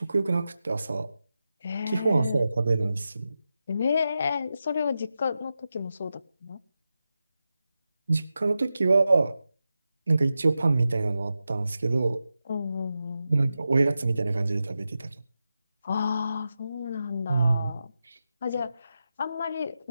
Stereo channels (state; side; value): inverted; both; correlation -0.91